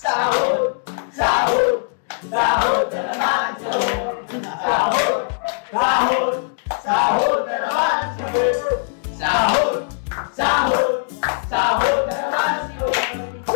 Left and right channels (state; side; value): silent; right; digital silence